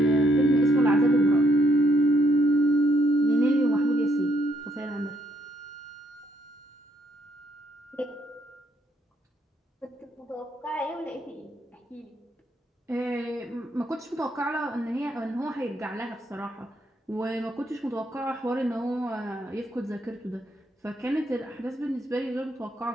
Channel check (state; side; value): normal; both; correlation 0.72